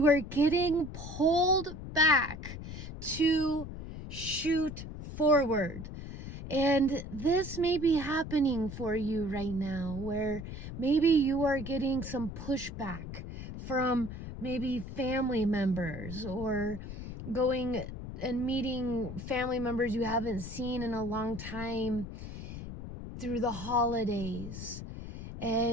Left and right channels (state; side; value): noise; left; rumble, 9 dB below the sound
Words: are getting pulled back to shoot forward. And this may be happening for you right now, where maybe you are getting some pushback from maybe family members, or going and meeting family members you haven't seen in a long time through the holidays.